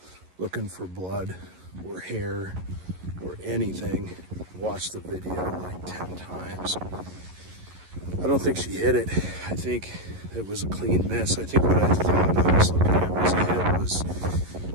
looking for blood or hair or anything. Watched the video like 10 times. I don't think she hit it. I think it was a clean miss. I think what I thought I was looking at was a hit was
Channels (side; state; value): left; late; 11 ms